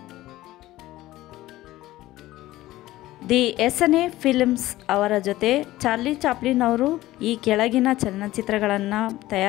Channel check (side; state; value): right; quieter; 16.4 dB